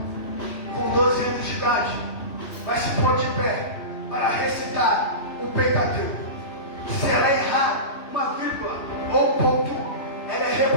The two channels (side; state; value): right; late; 3.0 ms